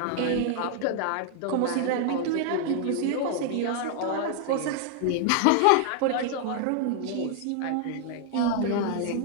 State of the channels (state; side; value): different; both; correlation 0.00